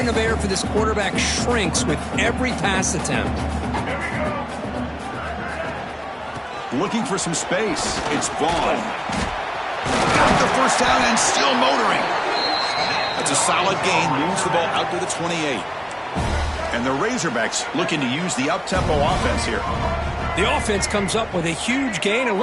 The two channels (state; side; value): identical; both; correlation 1.00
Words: of error for this quarterback shrinks with every pass attempt. Looking for some space. It's Vaughn. Got the 1st down and still motoring. That's a solid gain. Moves the ball out to the 28. And the Razorbacks looking to use the up-tempo offense here. The offense comes up with a huge gain. It